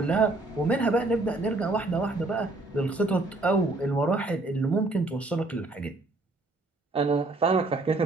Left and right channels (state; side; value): quieter; left; 3.0 dB